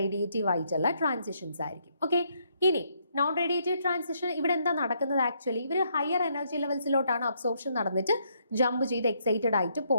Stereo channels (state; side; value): inverted; both; correlation -0.73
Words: ആയിട്ടുള്ള ട്രാൻസിഷൻസ് ആയിരിക്കും. ഓക്കെ, ഇനി നോൺ റേഡിയേറ്റീവ് ട്രാൻസിഷൻ ഇവിടെ എന്താ നടക്കുന്നത്? ആക്ച്വലി ഇവർ ഹയർ എനർജി ലെവൽസിലോട്ടാണ് അബ്സോർപ്ഷൻ നടന്നിട്ട് ജമ്പ് ചെയ്ത് എക്സൈറ്റഡ് ആയിട്ട്